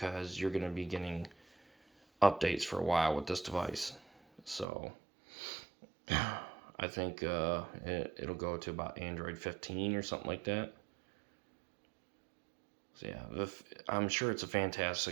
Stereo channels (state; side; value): drops out; left; at 4.7 s